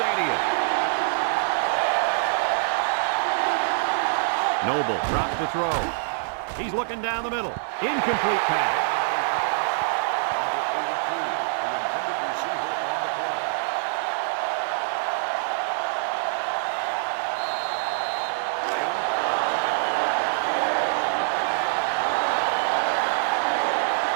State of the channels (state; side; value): silent; left; digital silence